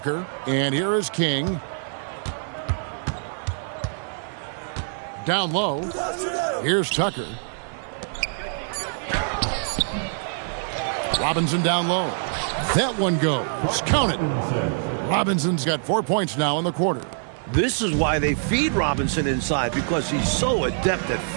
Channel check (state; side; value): silent; left; digital silence